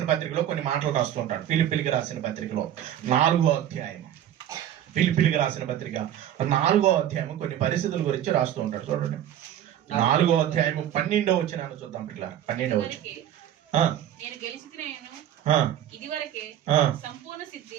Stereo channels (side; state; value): left; quieter; 11.1 dB